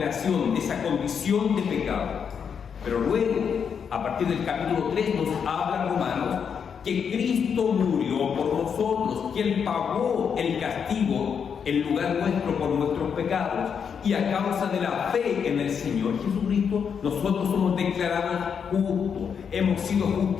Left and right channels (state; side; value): quieter; right; 7.0 dB